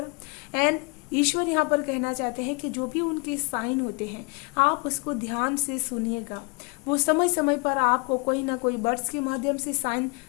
एंड ईश्वर यहाँ पर कहना चाहते हैं कि जो भी उनके साइन होते हैं आप उसको ध्यान से सुनिएगा। वो समय समय पर आपको कोई ना कोई बर्ड्स के माध्यम से साइन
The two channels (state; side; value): quieter; right; 31.2 dB